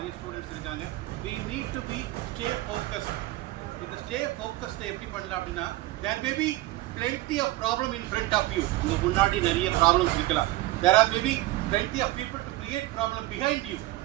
ஸ்டூடெண்ட்ஸ் இருக்காங்க. we need to be stay focused. இந்த ஸ்டே ஃபோக்கஸ்ட எப்படி பண்ணலாம் அப்படின்னா, there may be plenty of problem in front of you. உங்க முன்னாடி நிறைய ப்ராப்ளம்ஸ் இருக்கலாம். there are maybe plenty of people to create problem behind you,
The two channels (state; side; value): quieter; left; 18.0 dB